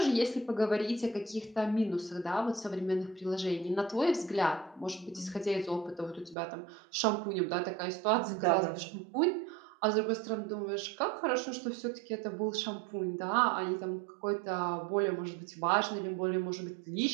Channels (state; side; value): drops out; left; at 6.4 s